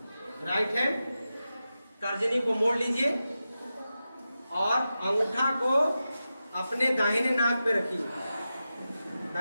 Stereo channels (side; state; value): both; inverted; correlation -0.91